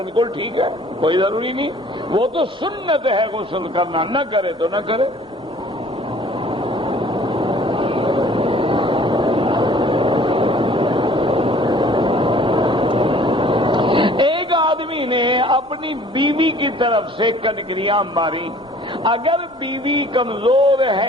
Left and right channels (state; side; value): normal; both; correlation 0.52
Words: ٹھیک ہے، کوئی ضروری نہیں، وہ تو سنت ہے غسل کرنا، نہ کرے تو نہ کرے۔ ایک آدمی نے اپنی بیوی کی طرف سے کنکریاں ماری، اگر بیوی کمزور